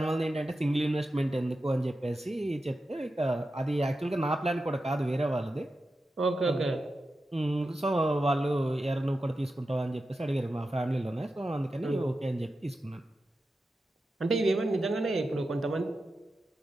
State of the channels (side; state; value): both; normal; correlation 0.91